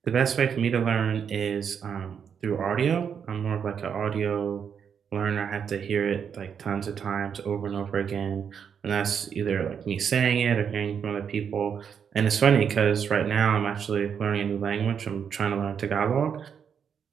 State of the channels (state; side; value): quieter; left; 7.4 dB